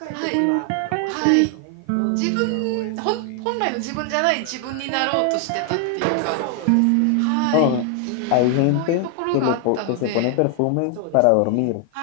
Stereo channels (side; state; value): both; different; correlation 0.00